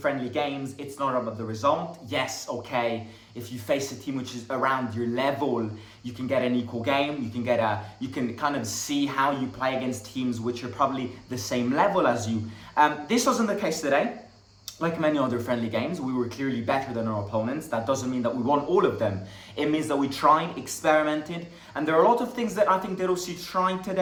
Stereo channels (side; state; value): both; identical; correlation 1.00